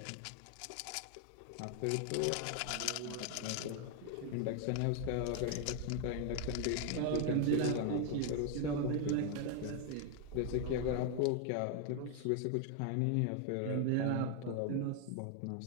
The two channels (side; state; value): both; different; correlation 0.00